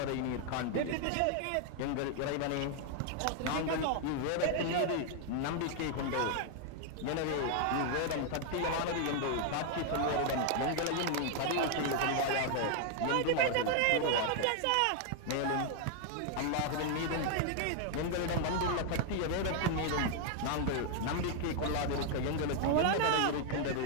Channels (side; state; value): both; different; correlation 0.00